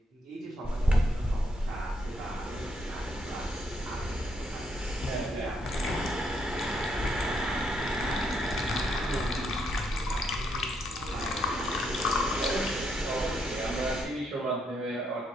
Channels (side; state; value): both; normal; correlation 0.76